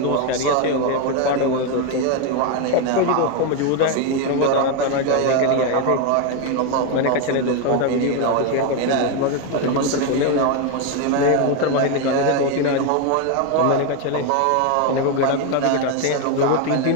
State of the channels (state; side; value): different; both; correlation 0.02